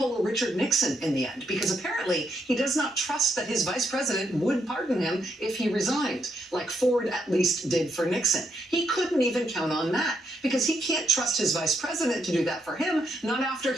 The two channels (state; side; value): normal; both; correlation 0.78